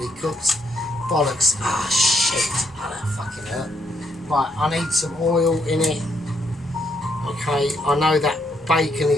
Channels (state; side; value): normal; both; correlation 0.74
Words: cooked. Bollocks. Ah, shit. Oh, that fucking hurt. Right, I need some oil in it. Okay, I know that bacon